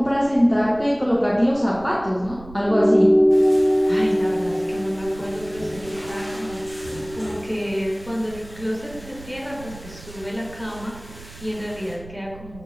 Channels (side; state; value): right; noise; rumble, 18 dB below the sound